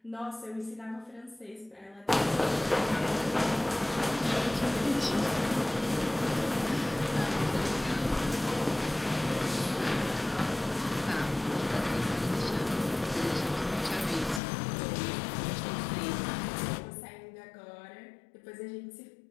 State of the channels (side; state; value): right; drops out; at 14.4 s